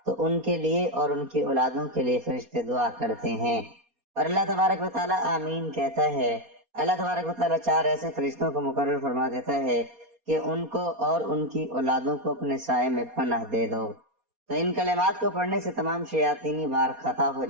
تو ان کے لیے اور ان کی اولادوں کے لیے فرشتے دعا کرتے ہیں، اور اللہ تبارک و تعالیٰ آمین کہتا ہے۔ اللہ تبارک و تعالیٰ 4 ایسے فرشتوں کو مقرر فرما دیتا ہے کہ ان کو اور ان کی اولادوں کو اپنے سائے میں پناہ دے دو۔ تو ان کلمات کو پڑھنے سے تمام شیاطینی بار خطا ہو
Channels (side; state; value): left; late; 4.2 ms